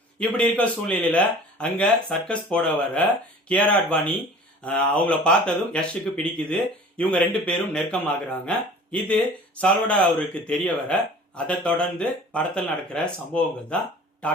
இப்படி இருக்க சூழ்நிலையில அங்க சர்க்கஸ் போட வர கியாரா அத்வானி அவங்கள பார்த்ததும் யஷுக்கு பிடிக்குது. இவங்க ரெண்டு பேரும் நெருக்கமாகறாங்க. இது சால்வடார் அவருக்கு தெரிய வர அதை தொடர்ந்து படத்தில் நடக்கிற சம்பவங்கள் தான்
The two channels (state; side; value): normal; both; correlation 0.44